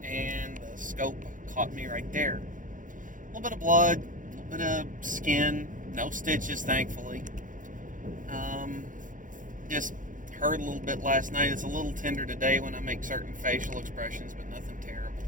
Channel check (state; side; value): late; left; 0.38 ms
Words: and the scope caught me right there. A little bit of blood, a little bit of skin, no stitches, thankfully. Just hurt a little bit last night. It's a little tender today when I make certain facial expressions, but nothing terrible.